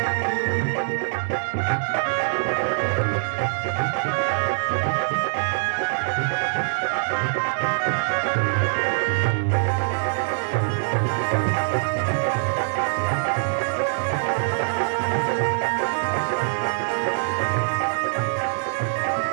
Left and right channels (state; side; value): silent; left; digital silence